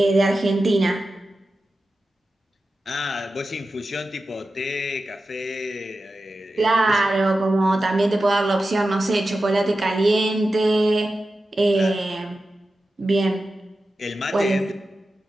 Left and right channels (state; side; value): normal; both; correlation 0.92